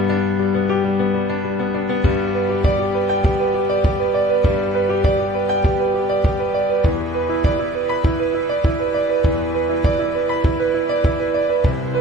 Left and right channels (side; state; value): both; normal; correlation 0.49